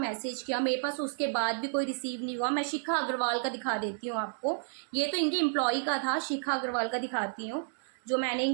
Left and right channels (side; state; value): left; silent; digital silence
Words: किया, मेरे पास उसके बाद भी कोई रिसीव नहीं हुआ। मैं शिखा अग्रवाल का दिखा देती हूँ आपको, ये तो इनके एम्प्लॉय का था, शिखा अग्रवाल का दिखाती हूँ, जो मैंने